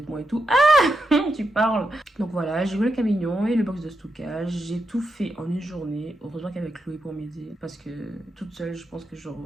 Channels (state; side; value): normal; both; correlation 0.85